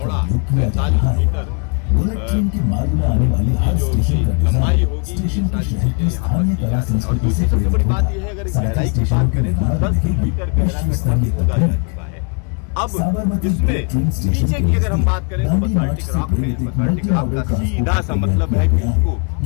47 मीटर की जो लंबाई होगी। ये सारी चीजें यहाँ पर की जा रही है। और दूसरी सबसे बड़ी बात यह है, अगर इस गहराई की बात करें तो 10 मीटर गहरा गड्ढा खोदा जा चुका है। अब इसमें नीचे की अगर हम बात करें तो बसाल्टिक रॉक है। बसाल्टिक रॉक का सीधा सा मतलब है कि उसको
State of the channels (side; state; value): right; quieter; 35.4 dB